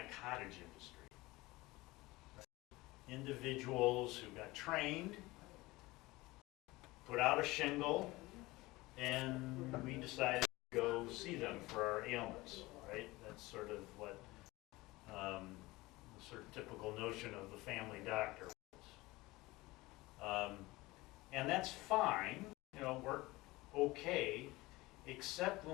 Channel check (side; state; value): right; quieter; 20.6 dB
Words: cottage industry. Right? Individuals who got trained, put out a shingle, and we decided to go see them for our ailments, right? That's sort of what the sort of typical notion of the family doctor was. And that's fine, worked okay, except